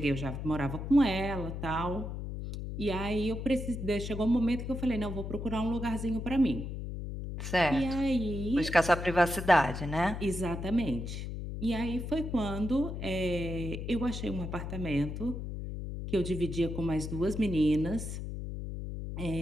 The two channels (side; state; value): left; noise; hum, 6 dB below the sound